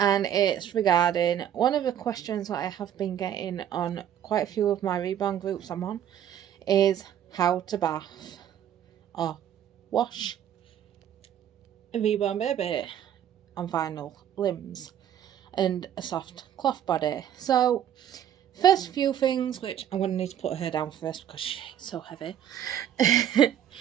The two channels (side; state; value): left; quieter; 10.2 dB